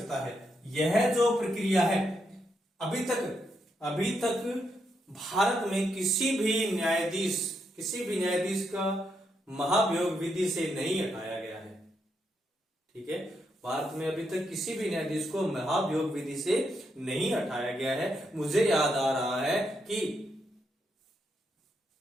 है। यह जो प्रक्रिया है, अभी तक भारत में किसी भी न्यायाधीश का महाभियोग विधि से नहीं हटाया गया है। ठीक है। भारत में अभी तक किसी भी न्यायाधीश को महाभियोग विधि से नहीं हटाया गया है। मुझे याद आ रहा है कि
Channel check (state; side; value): normal; both; correlation 0.80